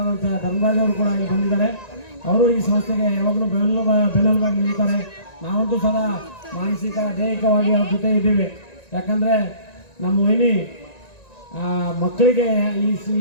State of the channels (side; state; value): right; late; 1.9 ms